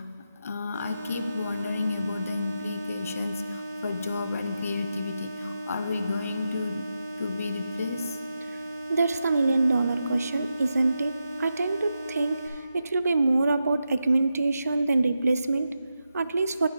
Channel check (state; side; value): inverted; both; correlation -0.88